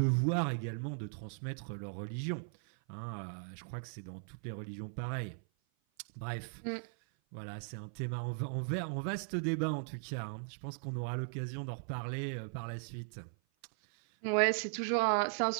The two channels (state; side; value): silent; left; 52 dB below the other